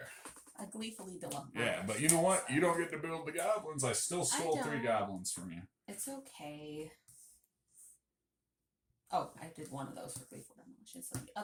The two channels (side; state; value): both; identical; correlation 1.00